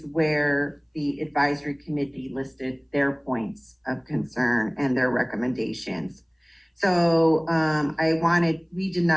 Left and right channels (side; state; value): both; identical; correlation 1.00